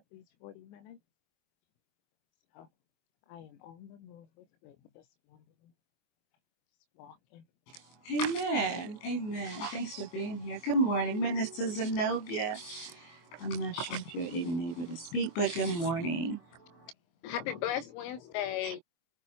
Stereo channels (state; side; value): late; right; 24 ms